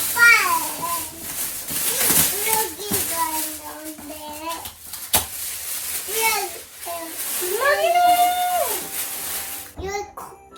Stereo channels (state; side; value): identical; both; correlation 1.00